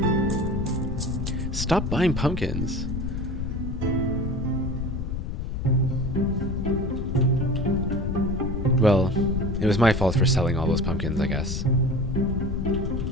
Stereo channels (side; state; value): left; noise; rumble, 3 dB below the sound